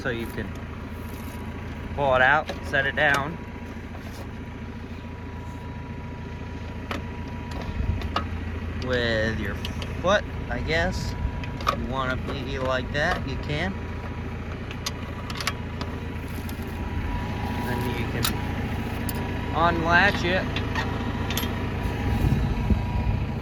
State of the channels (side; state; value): both; identical; correlation 1.00